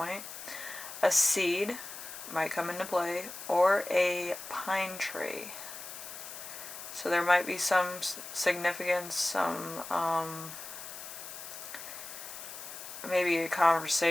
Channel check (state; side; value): noise; left; hiss, 11 dB below the sound